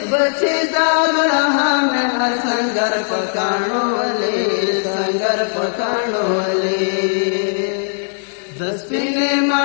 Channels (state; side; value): silent; right; digital silence